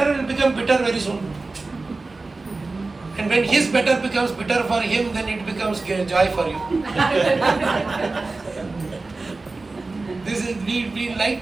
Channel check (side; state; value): left; quieter; 3.5 dB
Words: will become bitter very soon. And when his better becomes bitter for him, then it becomes joy for you. This is, we